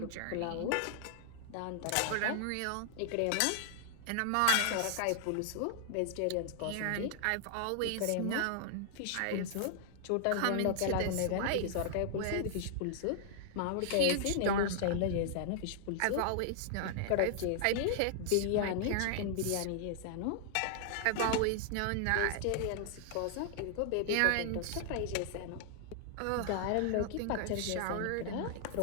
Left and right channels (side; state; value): both; different; correlation 0.00